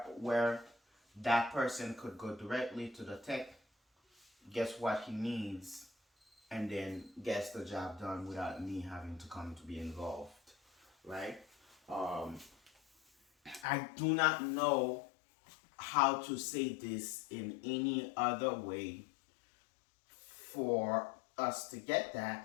that person could go directly to the tech, guess what he needs, and then gets the job done without me having to come to be involved, right? Um, I do not know how to say this in any other way for us to get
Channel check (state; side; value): drops out; right; at 13.7 s